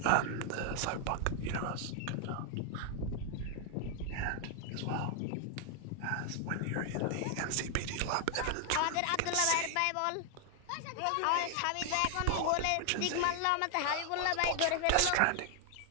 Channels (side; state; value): both; different; correlation 0.00